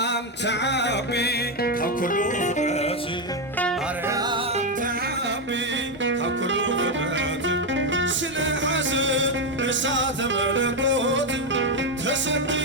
ተዓቢ ካብ ኩሉ ፍጥረት ማርያም ተዓቢ ካብ ኩሉ ፍጥረት ስለ ሓዘን እሳተ መለኮት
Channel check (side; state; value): both; normal; correlation 0.06